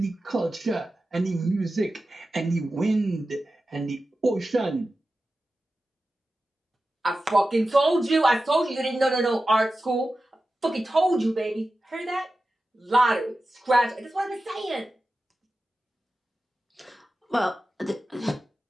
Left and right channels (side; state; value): both; normal; correlation 0.93